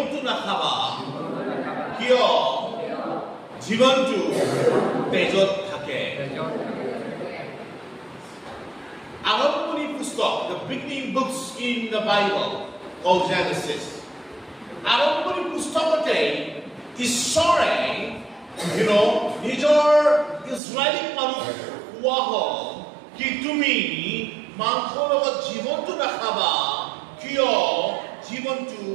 নাখাবা কিয় জীৱনটো তেজত থাকে। আৰম্ভণি পুস্তক, the beginning books in the Bible called Genesis. আৰম্ভণি পুস্তকতে ঈশ্বৰে নিজৰ ইজৰাইলী মানুহ কোৱা হ'ল কি তুমি মাংসৰ লগত জীৱনটো নাখাবা কিয় জীৱনটো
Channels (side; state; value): left; drops out; at 20.6 s